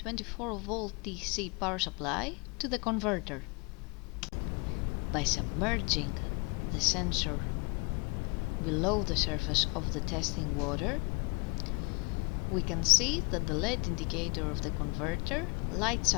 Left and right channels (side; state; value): right; quieter; 29.1 dB